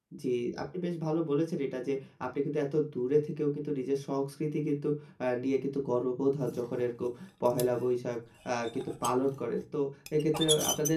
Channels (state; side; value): identical; both; correlation 1.00